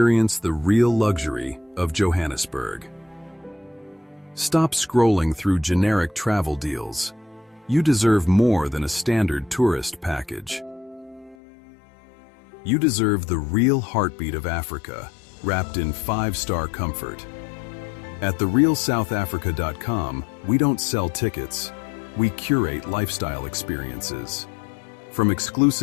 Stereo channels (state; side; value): drops out; right; at 11.4 s